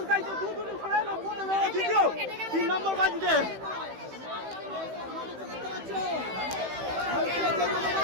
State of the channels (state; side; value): late; left; 15 ms